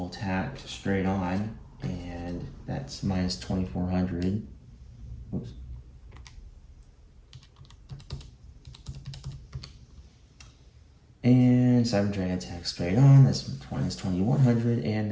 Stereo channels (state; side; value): identical; both; correlation 1.00